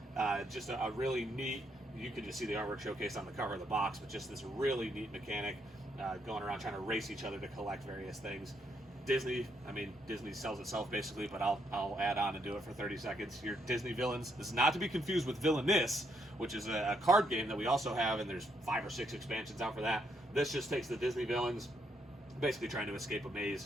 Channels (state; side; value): normal; both; correlation 0.75